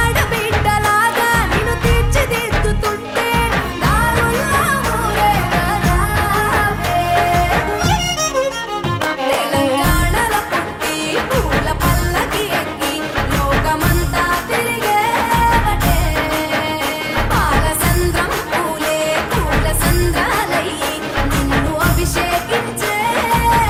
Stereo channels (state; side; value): identical; both; correlation 1.00